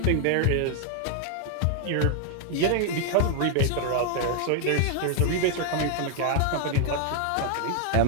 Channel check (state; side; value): different; both; correlation 0.00